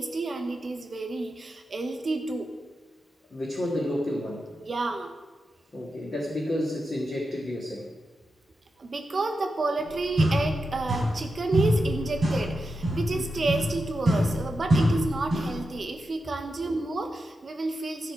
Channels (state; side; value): normal; both; correlation 0.89